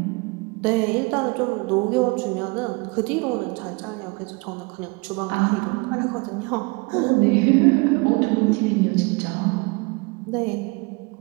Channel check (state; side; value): quieter; left; 28.7 dB